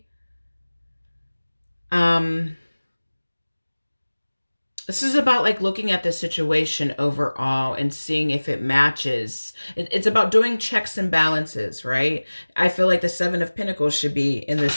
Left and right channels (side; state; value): both; inverted; correlation -1.00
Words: this is about like looking at the situation overall and seeing if it matches. It's about doing checks and balances, right? I feel like the Seven of Pentacles should be in this